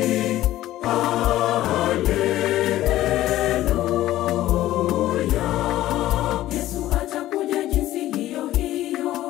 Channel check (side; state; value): right; quieter; 14.7 dB